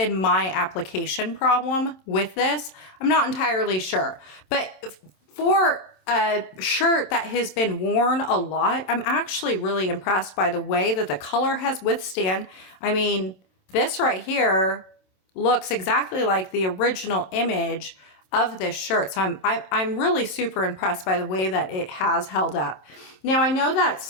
my application problem with this. I'm not entirely sure, but for a shirt that has been worn a lot, I'm actually really impressed by the way that the color has withstand. I mean, this right here looks exactly like the original image of this shirt. So I'm really super impressed by the way that it has held up. Now I know that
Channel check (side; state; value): right; late; 27 ms